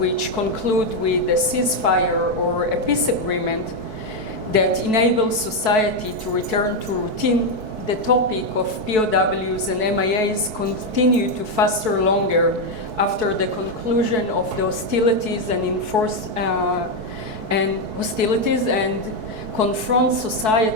conclude with a ceasefire or a peace agreement that enables society to return to routine, the topic of POWs and MIAs continue to fester longer after the conclusion of the hostilities and confront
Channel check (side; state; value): left; late; 4.6 ms